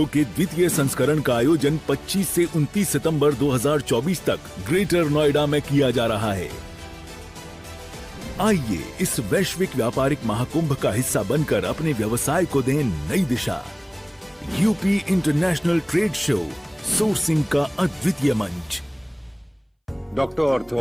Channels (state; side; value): identical; both; correlation 1.00